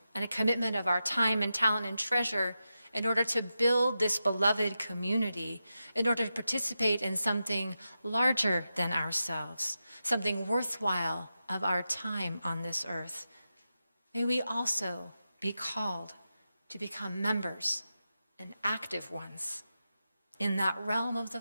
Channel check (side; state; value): both; inverted; correlation -0.90